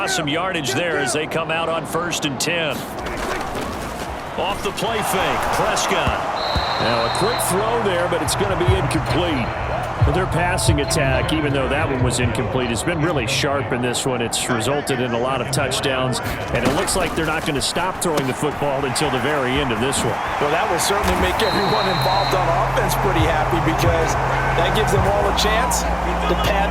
some yardage there as they come out on 1st and 10. Off the play fake, Prescott. Now a quick throw there, but it's going to be incomplete. Well, their passing attack, even though that one was incomplete, has been really sharp in this one. It's resulted in a lot of touchdowns, and it looks like they're not going to stop throwing the football until the very end of this one. Well, that will certainly make everyone involved on offense pretty happy because that gives them all a chance to pad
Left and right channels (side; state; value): both; identical; correlation 1.00